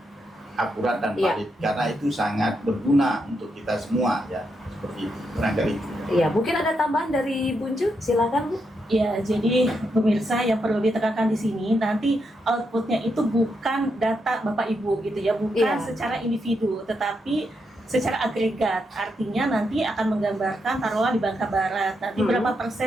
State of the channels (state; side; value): normal; both; correlation 0.82